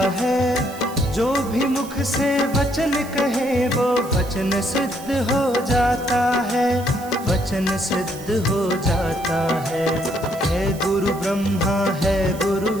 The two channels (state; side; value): noise; right; hiss, 18 dB below the sound